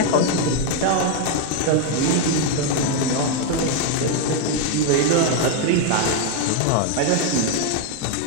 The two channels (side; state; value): both; different; correlation 0.01